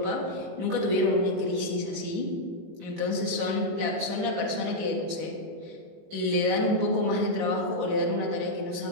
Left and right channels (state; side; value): late; left; 18 ms